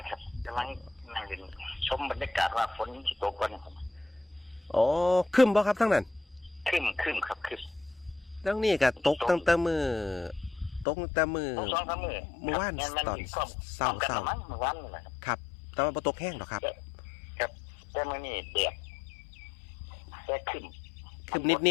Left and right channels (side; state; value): right; drops out; at 10.9 s